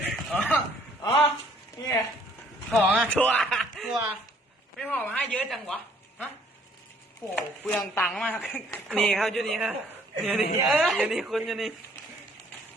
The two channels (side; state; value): both; normal; correlation 0.60